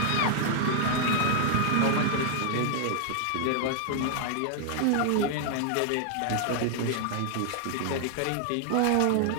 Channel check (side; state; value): both; different; correlation 0.00